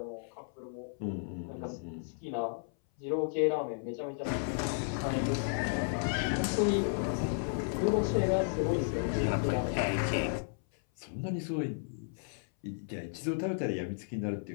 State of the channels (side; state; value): right; silent; 55 dB below the other